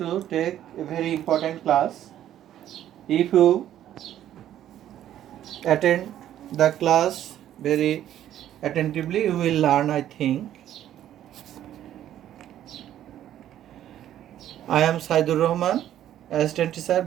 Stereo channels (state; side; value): quieter; left; 11.6 dB